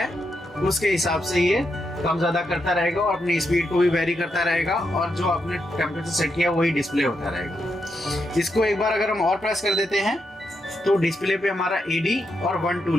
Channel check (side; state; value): both; normal; correlation 0.83